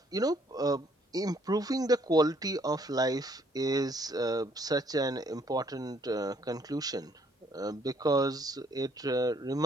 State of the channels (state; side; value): normal; both; correlation 0.65